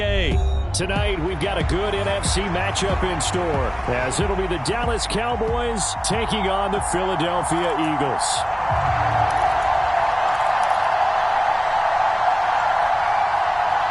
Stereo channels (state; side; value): identical; both; correlation 1.00